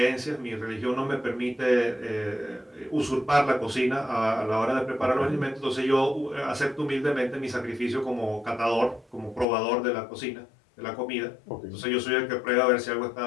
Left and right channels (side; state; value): right; drops out; at 9.5 s